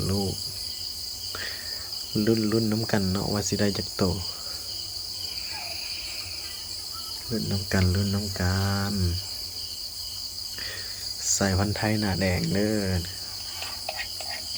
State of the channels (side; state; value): both; identical; correlation 1.00